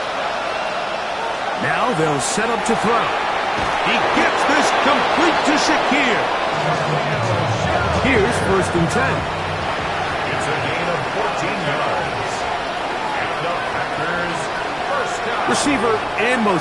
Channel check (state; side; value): identical; both; correlation 1.00